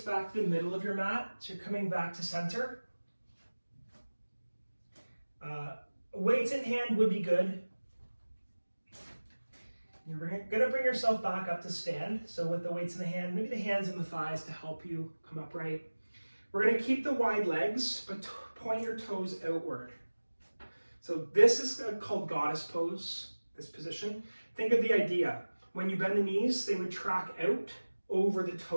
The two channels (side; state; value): both; inverted; correlation -1.00